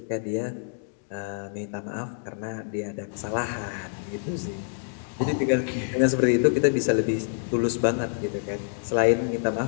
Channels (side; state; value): right; silent; digital silence